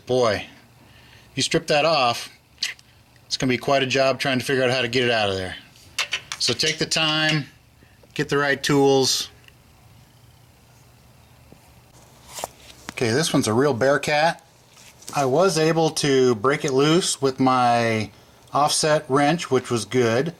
if you strip that off, it's going to be quite a job trying to figure out how to get it out of there. So take the time, get the right tools. Okay, this one's a real bearcat. I was able to break it loose with my offset wrench, which was good.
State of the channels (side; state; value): both; identical; correlation 1.00